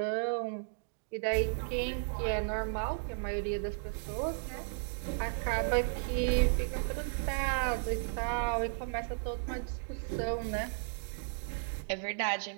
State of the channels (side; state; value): left; silent; digital silence